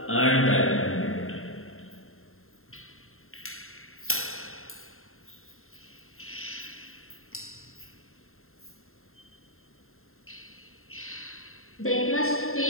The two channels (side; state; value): right; late; 0.61 ms